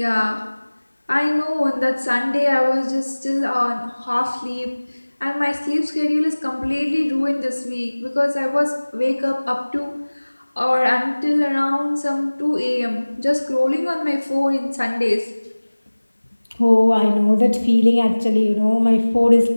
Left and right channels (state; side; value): inverted; both; correlation -1.00